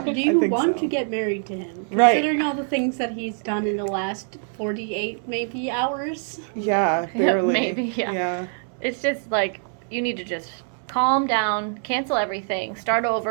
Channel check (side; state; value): left; silent; 60 dB below the other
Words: Do I you think want so. to get married to him? Right. Considering all the things that he's done in the last 48 maybe hours. Yeah, barely. Maybe, yeah. Yeah. It's just like you need to just calm down, cancel everything, start